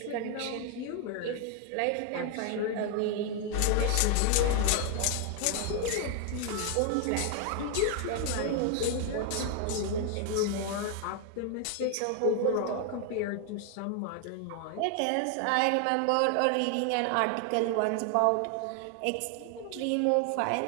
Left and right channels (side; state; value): both; different; correlation 0.00